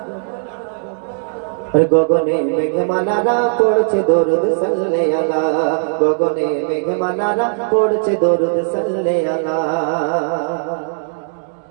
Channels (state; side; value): silent; left; digital silence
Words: গগনে মেঘমালারা পড়ছে দরুদ সাল্লে আলা, গগনে মেঘমালারা পড়ছে দরুদ সাল্লে আলা।